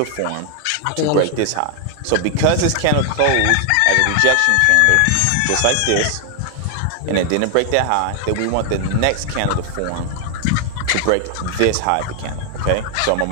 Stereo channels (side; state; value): both; different; correlation 0.00